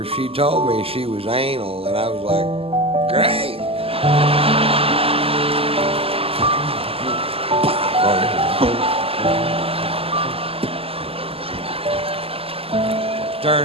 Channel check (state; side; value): late; left; 0.28 ms